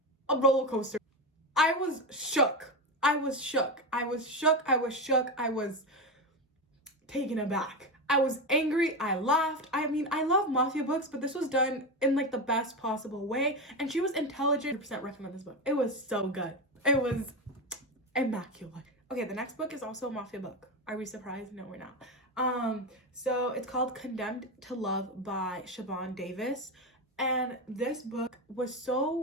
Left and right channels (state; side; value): normal; both; correlation 0.16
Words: a roller coaster. I was shook. I was taken aback. I was angry. I laughed. I mean, I love mafia books, but this was done in like the best possible way. And she was intelligent. 100% recommend this book. It was so good. It was immaculate. Okay, the next book is also a mafia book. Are we surprised? No, we're not. So it's called Condemned to Love by Siobhan Davis. And this book was